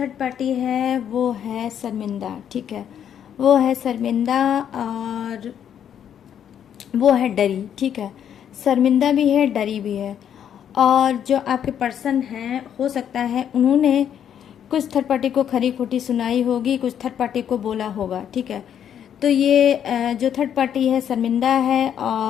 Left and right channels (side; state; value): right; quieter; 9.2 dB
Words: पार्टी है वो है शर्मिंदा, ठीक है, वो है शर्मिंदा और वो है डरी, ठीक है। शर्मिंदा भी है, डरी भी है। और जो आपके पर्सन हैं, हो सकता है उन्होंने कुछ थर्ड पार्टी को खरी खोटी सुनाई होगी, कुछ थर्ड पार्टी को बोला होगा, ठीक है। तो ये जो थर्ड पार्टी है शर्मिंदा है